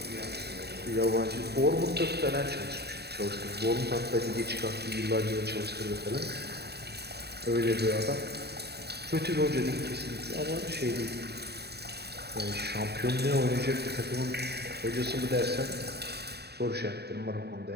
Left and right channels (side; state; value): left; late; 0.48 ms